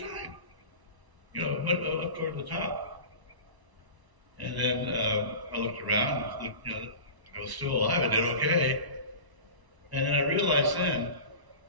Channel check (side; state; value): left; late; 1.0 ms